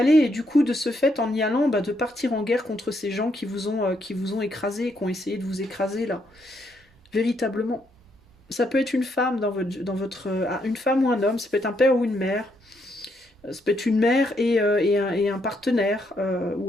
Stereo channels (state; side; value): normal; both; correlation 0.75